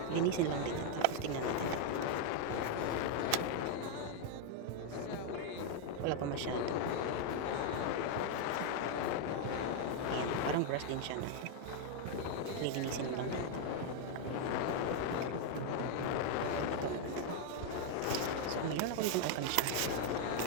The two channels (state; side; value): different; both; correlation 0.00